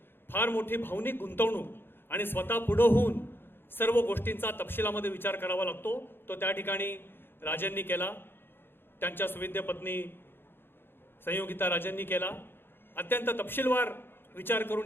फार मोठी भावनिक गुंतवणूक आणि स्वतः पुढे होऊन सर्व गोष्टींचा तपशिलामध्ये विचार करावा लागतो. तो त्या ठिकाणी राजेंनी केला, त्यांच्या सुविद्य पत्नी संयोगिता राजेंनी केला. अत्यंत तपशीलवार विचार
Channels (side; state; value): right; late; 0.10 ms